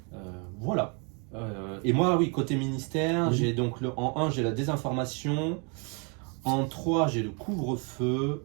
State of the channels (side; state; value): left; quieter; 34.9 dB